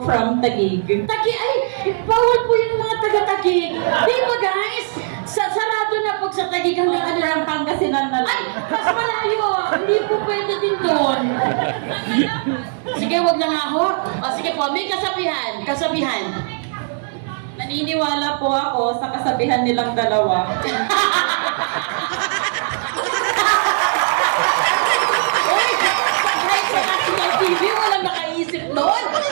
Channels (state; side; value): silent; left; digital silence